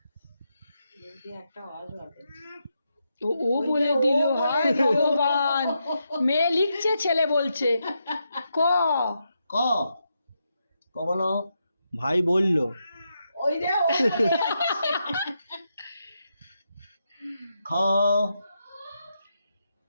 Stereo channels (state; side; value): inverted; both; correlation -0.84